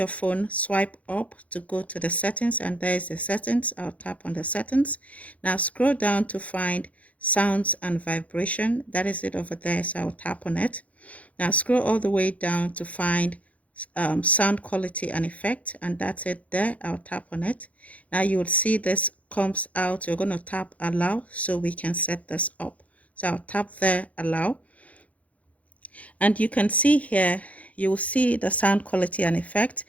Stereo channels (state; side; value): late; right; 0.067 ms